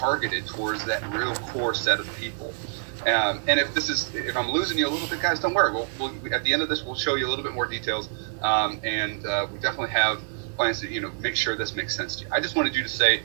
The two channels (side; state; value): left; silent; digital silence